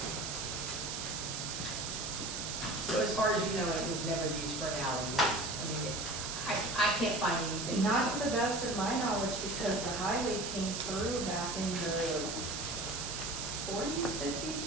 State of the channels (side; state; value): right; noise; hiss, 4 dB below the sound